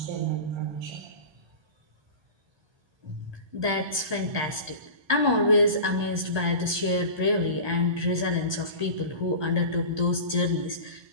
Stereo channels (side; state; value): left; late; 1.3 ms